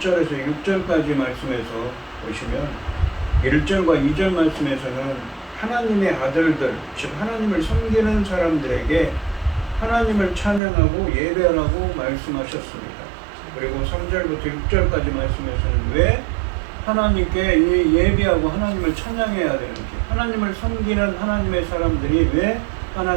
6절까지 말씀에서 보시면 1절과 2절 말씀에서는 하나님의 아들들, 즉 하나님을 섬기는 사람들에게 하나님을 찬양하고 예배하라고 말씀하셨습니다. 그리고 3절부터 6절까지 말씀에서는 왜 하나님께 예배하고 하나님을 찬양해야 되는지, 하나님을 섬기는 하나님의 사람들이 왜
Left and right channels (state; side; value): drops out; left; at 10.6 s